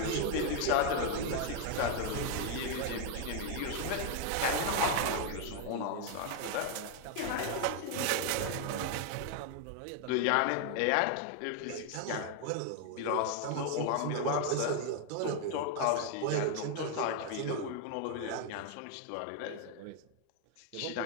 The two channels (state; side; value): different; both; correlation 0.00